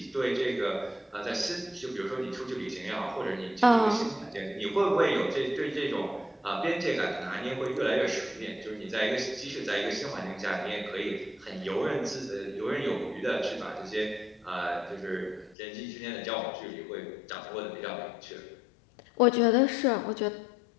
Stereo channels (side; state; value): right; drops out; at 15.6 s